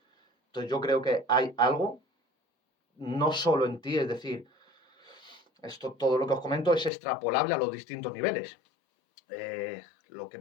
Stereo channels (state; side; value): drops out; right; at 6.9 s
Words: Entonces yo creo que hay algo, no solo en ti, es decir, todo lo que os comento es extrapolable a los distintos niveles. Lo que